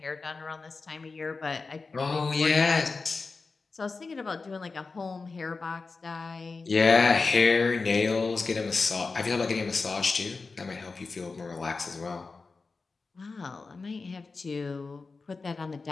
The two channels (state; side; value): quieter; right; 4.2 dB